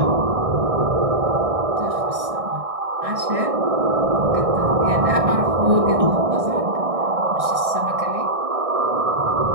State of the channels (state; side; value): late; left; 1.6 ms